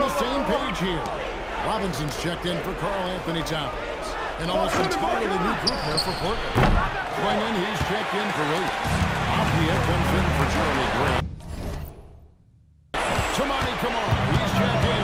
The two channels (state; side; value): identical; both; correlation 1.00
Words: same page here. Robinson's checked in for Karl Anthony Towns. And almost entirely new group there for Portland. Swinging, he's checked in for Williams. Apia comes in for Charlie Grant. Tamani Kamara, he's checked in